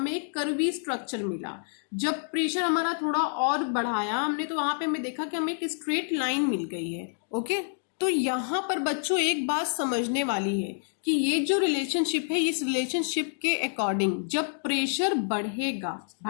एक कर्वी स्ट्रक्चर मिला। जब प्रेशर हमारा थोड़ा और बढ़ाया हमने तो वहां पे हमें देखा कि हमें एक स्ट्रेट लाइन मिल गई है। ओके, तो यहाँ पर बच्चों एक बात समझने वाली है कि ये जो रिलेशनशिप है, इस रिलेशनशिप के अकॉर्डिंग जब प्रेशर बढ़ेगा,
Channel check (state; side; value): silent; right; digital silence